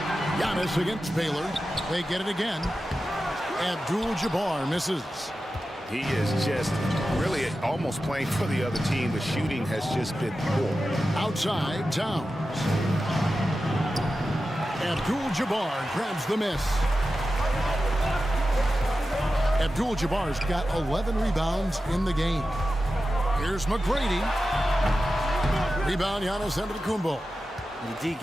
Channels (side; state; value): both; normal; correlation 0.93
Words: Giannis against Baylor. They get it again. Abdul-Jabbar misses. He is just really almost playing for the other team. The shooting has just been poor. Outside, Towns. Abdul-Jabbar grabs the miss. Abdul-Jabbar's got 11 rebounds in the game. Here's McGrady. Rebound, Giannis Antetokounmpo. The D